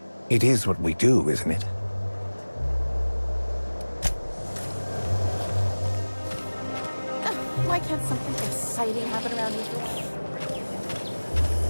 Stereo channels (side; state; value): both; inverted; correlation -1.00